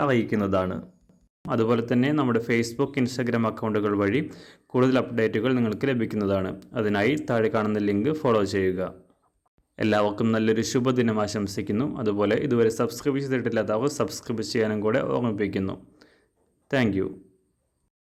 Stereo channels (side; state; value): both; identical; correlation 1.00